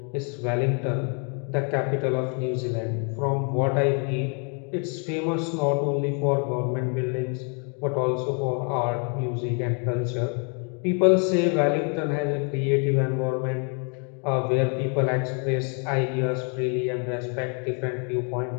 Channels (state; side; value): quieter; right; 39.6 dB